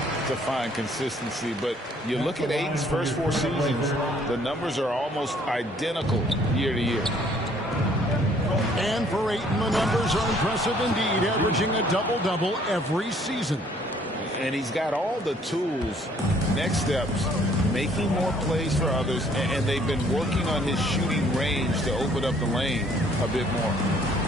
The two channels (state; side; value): normal; both; correlation 0.61